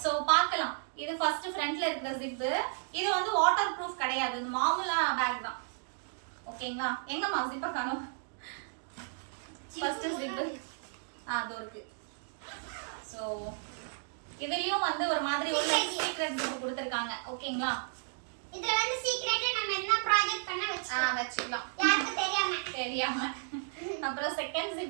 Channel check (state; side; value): silent; left; digital silence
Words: சோ பார்க்கலாம். இது ஃபர்ஸ்ட் ஃப்ரண்ட்ல இருக்கிற ஜிப். இது வந்து வாட்டர் ப்ரூஃப் கிடையாது. இது மாமூலா பேக் தான். ஓகேங்களா? எங்கம்மா ஜிப்பை காணோம். ஃபர்ஸ்ட் ஜிப் அதோ இருக்கு. சோ இதுலயும் வந்து ஒரு மாதிரி ஒரு சீக்ரெட் ஜிப் கொடுத்திருக்காங்க. ஓகேங்களா? இதுல வந்து சீக்ரெட்டா நம்ம என்ன ப்ராஜெக்ட் பண்ண வெச்சுக்கலாம். யாருக்கும் தெரியாம. அப்புறம் செகண்ட்